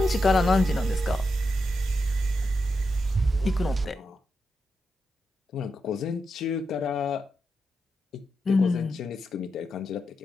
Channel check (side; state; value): both; normal; correlation 0.86